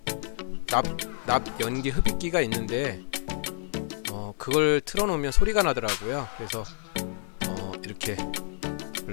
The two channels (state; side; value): silent; right; digital silence